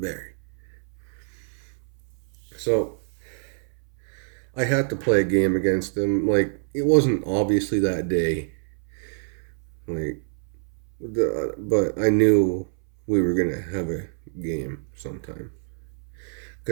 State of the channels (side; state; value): left; silent; 61 dB below the other